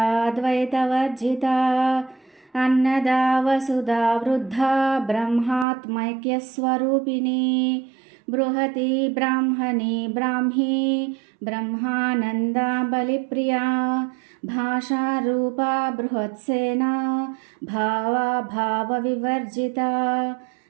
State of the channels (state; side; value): drops out; left; at 5.7 s